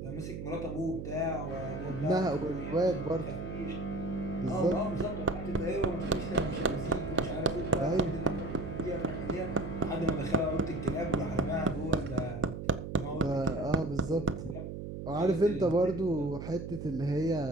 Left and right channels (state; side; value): noise; right; hum, 7 dB below the sound